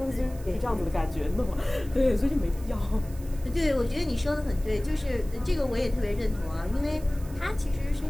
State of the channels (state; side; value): noise; right; hiss, 21 dB below the sound